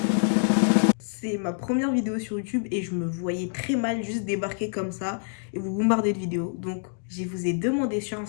C'est ma première vidéo sur YouTube et je me voyais très mal juste débarquer comme ça et vous bombarder de vidéos. Donc, je vous ai demandé sur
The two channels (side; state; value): right; silent; 61 dB below the other